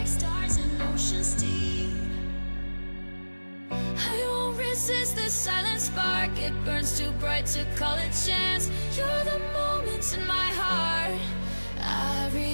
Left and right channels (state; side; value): inverted; both; correlation -1.00